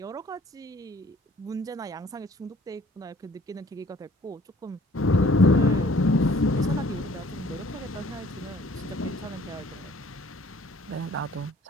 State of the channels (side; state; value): both; normal; correlation 0.55